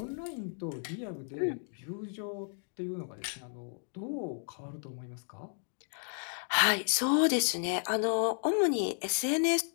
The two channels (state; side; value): silent; right; 56 dB below the other